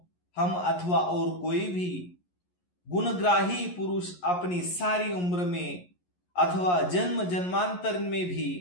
हम अथवा और कोई भी गुणग्राही पुरुष अपनी सारी उम्र में अथवा जन्म जन्मांतर में भी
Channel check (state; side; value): late; right; 11 ms